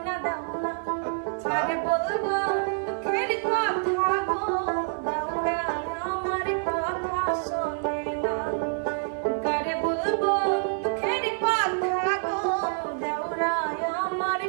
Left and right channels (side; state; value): left; silent; 55 dB below the other